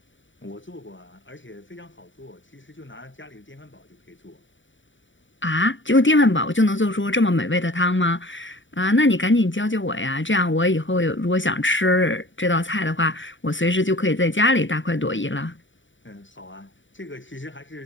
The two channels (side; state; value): right; late; 0.55 ms